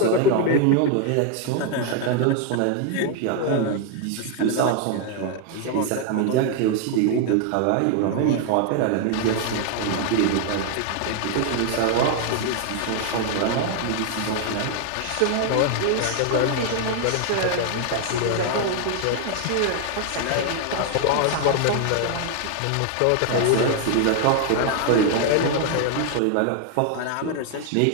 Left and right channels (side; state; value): both; different; correlation 0.00